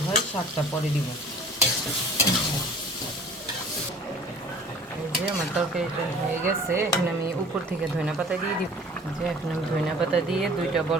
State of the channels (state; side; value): normal; both; correlation 0.47